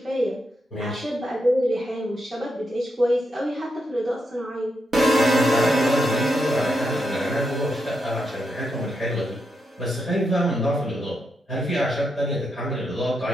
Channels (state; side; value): normal; both; correlation 0.83